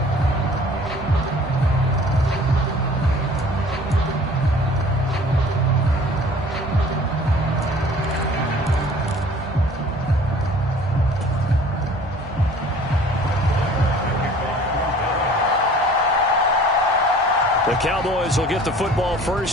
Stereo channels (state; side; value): normal; both; correlation 0.49